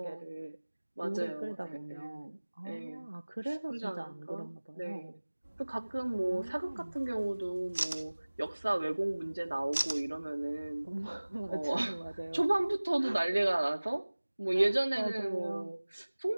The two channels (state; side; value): inverted; both; correlation -1.00